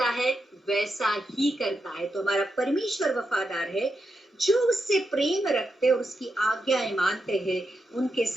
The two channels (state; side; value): normal; both; correlation 0.86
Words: है वैसा ही करता है। तो हमारा परमेश्वर वफादार है। जो उससे प्रेम रखते और उसकी आज्ञाएं मानते हैं, उनके